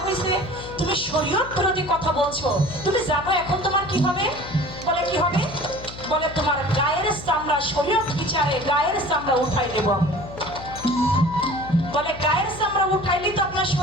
হয়েছে, তুমি শরীয়ত বিরোধী কথা বলছো। তুমি জানো এখন তোমার কি হবে? বলে কি হবে? বলে তোমার গায়ের চামড়া শরীয়ত বিচারে গায়ের চামড়া উঠাই দেব। বলে গায়ের চামড়া উঠাইলে তো আপনার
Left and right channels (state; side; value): noise; left; hum, 14 dB below the sound